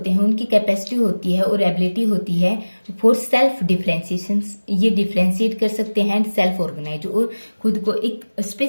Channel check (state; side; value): inverted; both; correlation -1.00